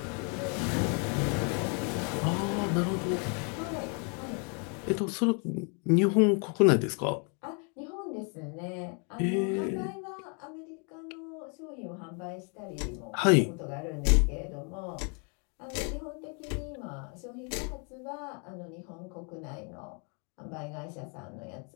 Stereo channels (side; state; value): right; quieter; 37.9 dB